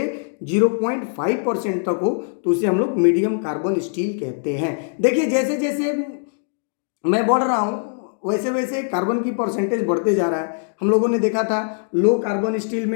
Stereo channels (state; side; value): silent; right; digital silence